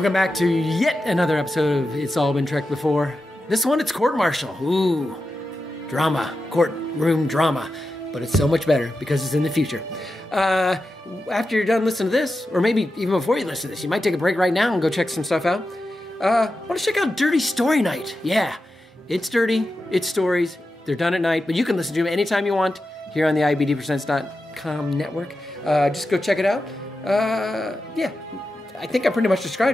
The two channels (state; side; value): normal; both; correlation 0.91